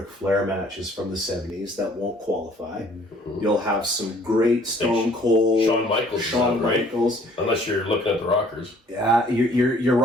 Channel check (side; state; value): both; normal; correlation 0.57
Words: Flair matches from the 70s that won't qualify. You'll have some great Stone Cold, Shawn Michaels, unless you're looking at the Rockers. Yeah, your